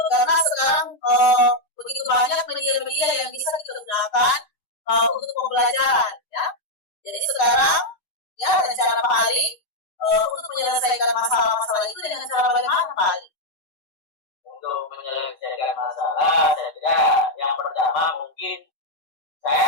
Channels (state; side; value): late; right; 6.3 ms